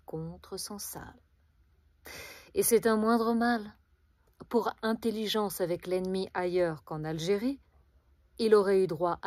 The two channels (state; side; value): identical; both; correlation 1.00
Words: contre Sansal. Et c'est un moindre mal. Pour intelligence avec l'ennemi ailleurs qu'en Algérie, il aurait eu droit